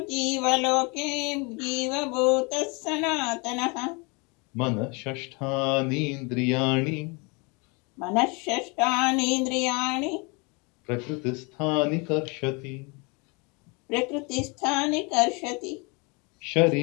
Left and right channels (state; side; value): quieter; right; 30.2 dB